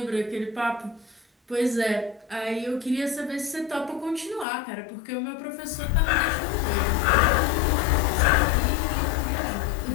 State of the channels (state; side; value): drops out; right; at 4.5 s